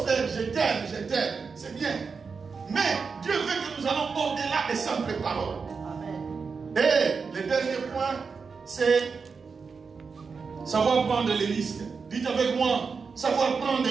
frère, je t'aime, je t'aime. C'est bien. Mais Dieu veut que nous allons au-delà des simples paroles. Amen. Et le dernier point, c'est savoir prendre les risques. Dites avec moi, savoir prendre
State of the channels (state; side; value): quieter; left; 5.2 dB